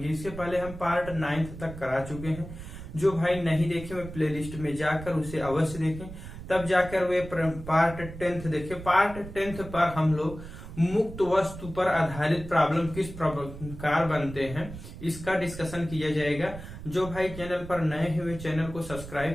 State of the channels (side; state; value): right; noise; rumble, 12 dB below the sound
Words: इससे पहले हम पार्ट 9th तक करा चुके हैं। जो भाई नहीं देखे वे प्लेलिस्ट में जाकर उसे अवश्य देखें, तब जाकर वे पार्ट 10th देखें। पार्ट 10th पर हम लोग मुक्त वस्तु पर आधारित प्रॉब्लम किस प्रकार बनते हैं इसका डिस्कशन किया जाएगा। जो भाई चैनल पर नए हुए चैनल को